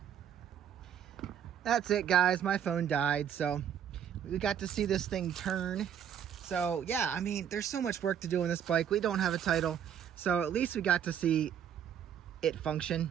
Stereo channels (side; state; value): left; quieter; 8.9 dB